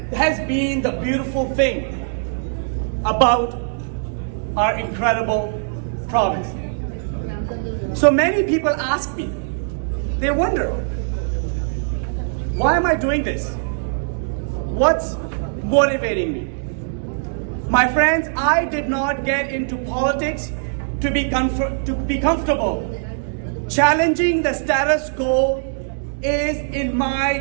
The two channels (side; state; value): left; silent; digital silence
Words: has been the beautiful thing about our incredible province. So many people ask me, they wonder, why am I doing this? What's motivating me? My friends, I did not get into politics to be comfortable. Challenging the status quo is in my